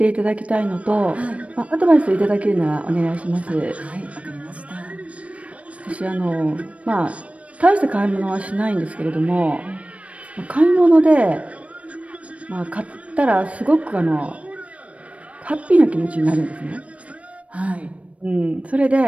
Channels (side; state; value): left; late; 0.064 ms